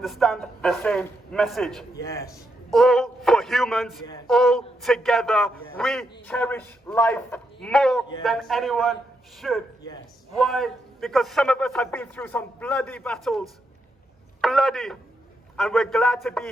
the same message. Yes. All for humans, Yes. all together. Yes. We cherish life more Yes. than anyone should. Yes. Why? Because some of us have been through some bloody battles. Bloody. And we're glad to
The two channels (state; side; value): normal; both; correlation 0.81